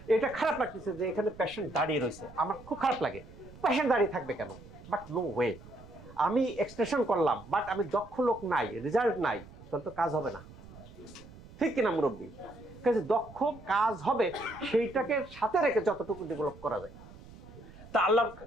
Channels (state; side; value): noise; right; rumble, 19 dB below the sound